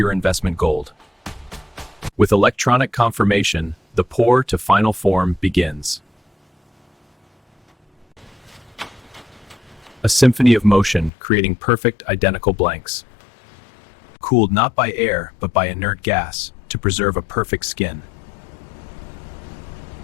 investment gold. With electronic confirmation, the pour to final form begins. A symphony of motion, creating perfect identical blanks. Cooled not by air, but by inert gas, to preserve a perfect skin.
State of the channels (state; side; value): drops out; right; at 11.1 s